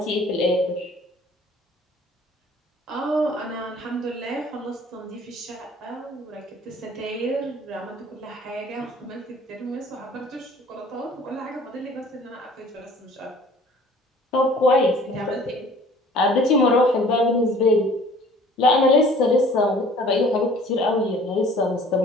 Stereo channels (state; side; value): normal; both; correlation 0.51